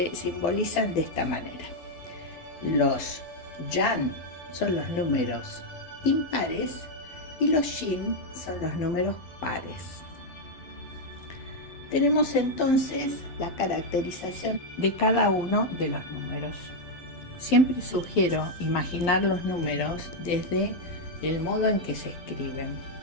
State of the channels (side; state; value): right; late; 12 ms